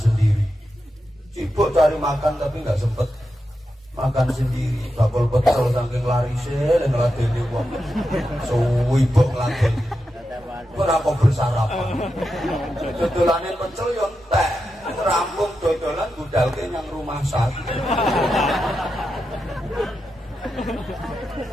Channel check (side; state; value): both; normal; correlation 0.88